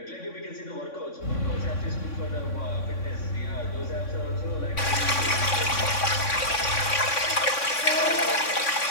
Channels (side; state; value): right; late; 3.6 ms